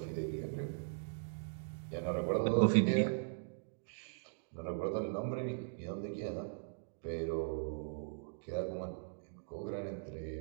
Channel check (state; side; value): silent; left; digital silence